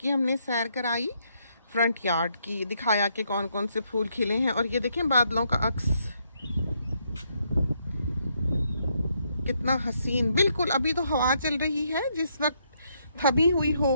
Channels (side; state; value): both; inverted; correlation -0.75